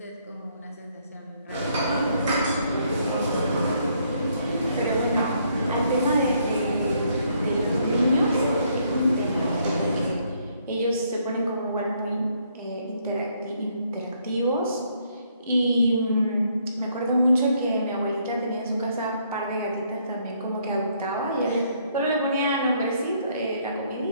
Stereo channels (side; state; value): both; inverted; correlation -0.70